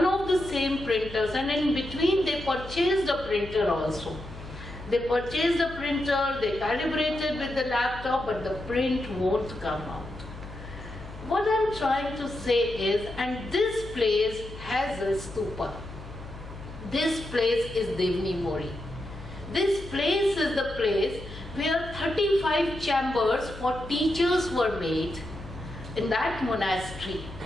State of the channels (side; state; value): left; noise; hum, 14 dB below the sound